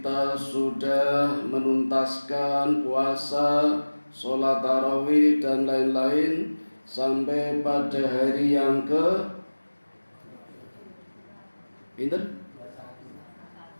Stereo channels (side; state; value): both; inverted; correlation -1.00